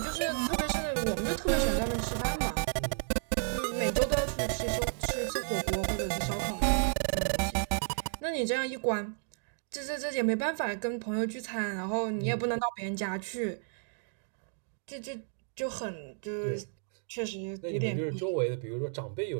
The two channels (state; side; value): silent; left; digital silence